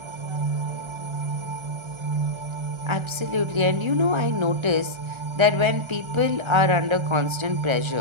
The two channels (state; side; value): late; left; 1.4 ms